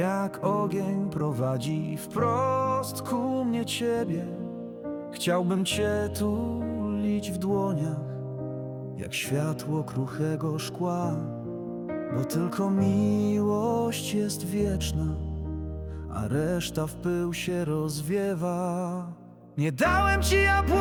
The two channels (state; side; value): identical; both; correlation 1.00